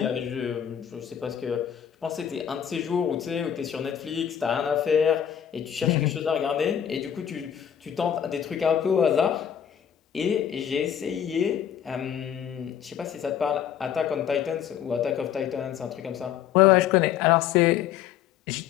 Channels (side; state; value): right; quieter; 9.3 dB